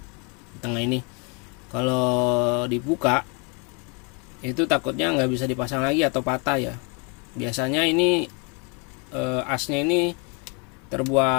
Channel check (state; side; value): quieter; right; 33.8 dB